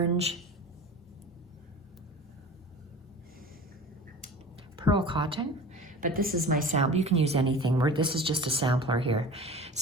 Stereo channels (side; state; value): both; normal; correlation 0.38